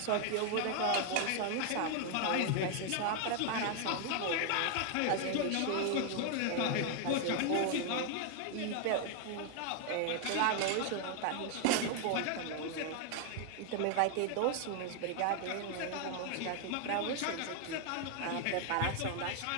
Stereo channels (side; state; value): both; different; correlation 0.00